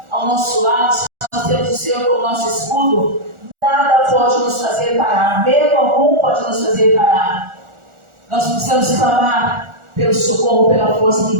ao nosso lado, se nós temos o Senhor como nosso escudo, nada pode nos fazer parar. Medo algum pode nos fazer parar. Nós precisamos clamar pelo socorro, pela força que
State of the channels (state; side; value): late; left; 1.4 ms